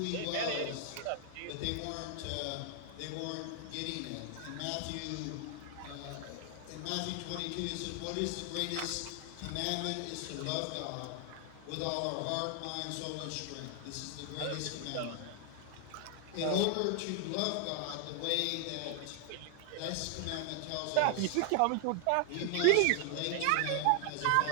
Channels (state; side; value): different; both; correlation 0.00